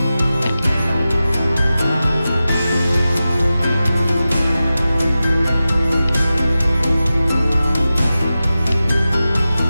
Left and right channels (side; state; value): both; inverted; correlation -0.94